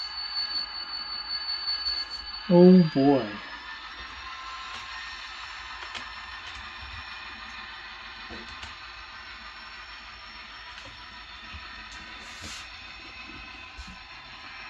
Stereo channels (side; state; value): both; identical; correlation 1.00